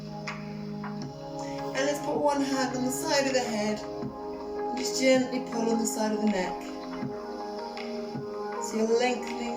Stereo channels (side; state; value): both; identical; correlation 1.00